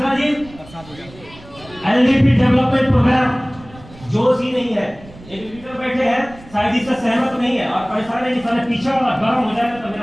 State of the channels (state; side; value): noise; right; rumble, 21 dB below the sound